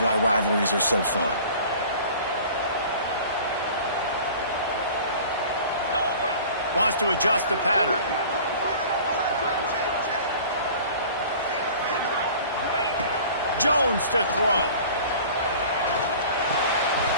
rivalries are so fun. Wants to adjust the pattern. Jones to throw.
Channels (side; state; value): both; inverted; correlation -0.44